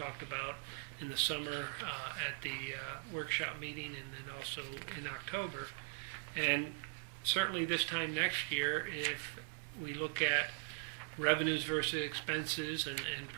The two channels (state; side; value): silent; left; 51 dB below the other